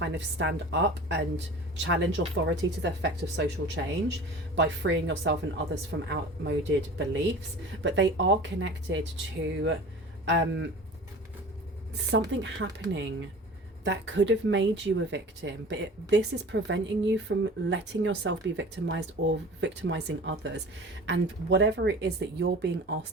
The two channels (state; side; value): normal; both; correlation 0.39